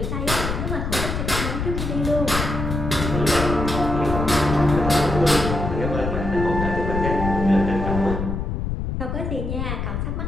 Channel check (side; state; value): left; noise; rumble, 3 dB below the sound